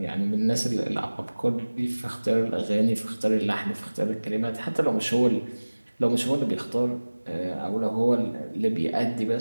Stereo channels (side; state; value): both; inverted; correlation -1.00